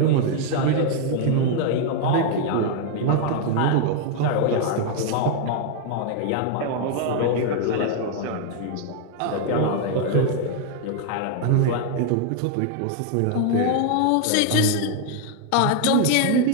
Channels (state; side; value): different; both; correlation 0.00